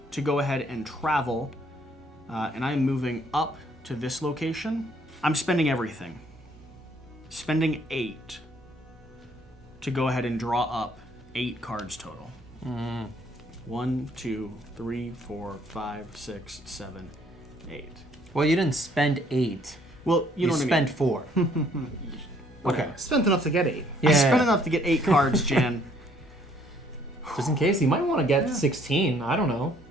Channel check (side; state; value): both; normal; correlation 0.63